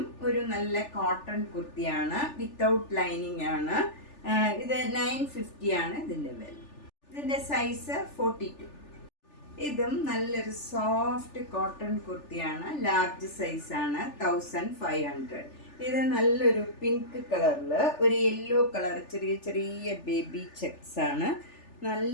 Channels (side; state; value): right; late; 3.4 ms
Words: ഒരു നല്ല കോട്ടൺ കുർത്തിയാണ്. വിത്തൗട്ട് ലൈനിങ് ആണ്. ഇത് 950 ആണ് ഇതിൻ്റെ വില. ഇതിൻ്റെ സൈസ് 42. ഇതും നല്ലൊരു സോഫ്റ്റ് കോട്ടൺ കുർത്തിയാണ്. ലാർജ് സൈസാണ്. 1500. ഇത് നല്ലൊരു പിങ്ക് കളറിൽ ഒരു യെല്ലോ കളർ ചെറിയ ചെറിയ ബേബി ചെക്സ് ആണ്.